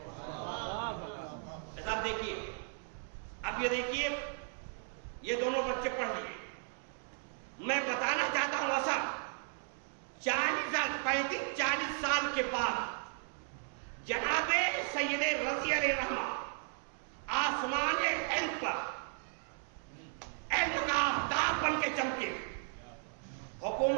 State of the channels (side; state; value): left; silent; 54 dB below the other